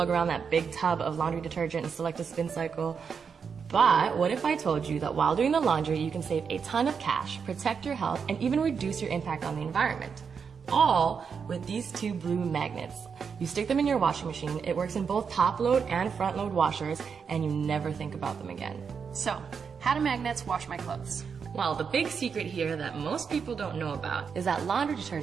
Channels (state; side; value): quieter; left; 6.2 dB